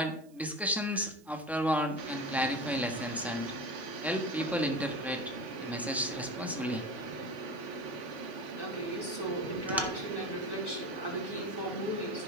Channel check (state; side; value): noise; right; hiss, 29 dB below the sound